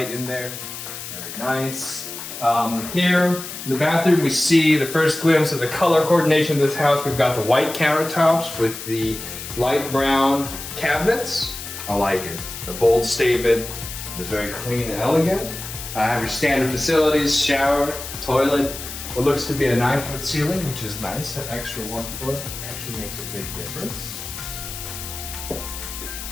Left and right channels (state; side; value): noise; left; hiss, 9 dB below the sound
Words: in there. Nice. Here in the bathroom, we see the first glimpse of the color coordination of this house. We've got the white countertops with the light brown cabinets. I like it. The bold statement, just very clean and elegant. I have your standard facilities, shower, toilet. What looks to be a 9-foot ceiling, which is nice. That extra 1 foot actually makes a big difference.